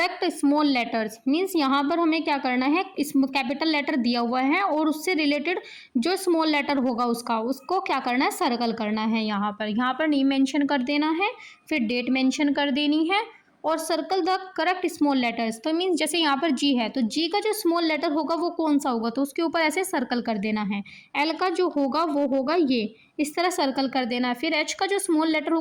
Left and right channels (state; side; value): identical; both; correlation 1.00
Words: small letters, means यहाँ पर हमें क्या करना है, इस कैपिटल लेटर दिया हुआ है और उससे रिलेटेड जो स्मॉल लेटर होगा उसको क्या करना है, सर्कल करना है। यहाँ पर नेम मेंशन कर देना है, फिर डेट मेंशन कर देनी है, और circle the correct small letters. तो मीन्स जैसे यहाँ पर जी है तो जी का जो स्मॉल लेटर होगा वो कौन सा होगा, तो उसके ऊपर ऐसे सर्कल कर देना है। एल का जो होगा वो होगा ये, इस तरह सर्कल कर देना है। फिर एच का जो स्मॉल लेटर